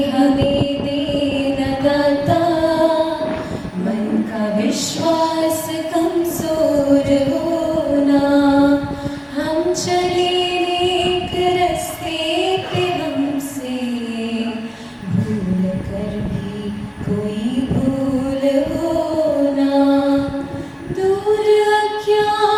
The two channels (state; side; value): identical; both; correlation 1.00